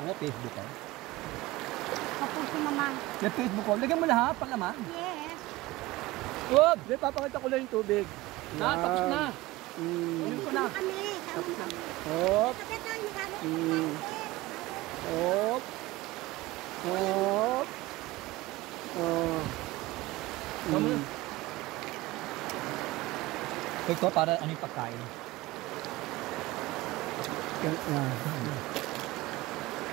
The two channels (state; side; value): quieter; left; 19.4 dB